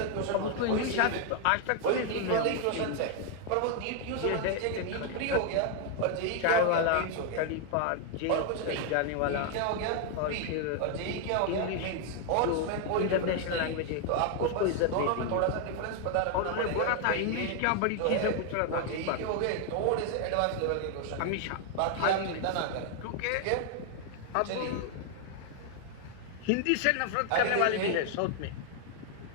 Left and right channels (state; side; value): different; both; correlation 0.00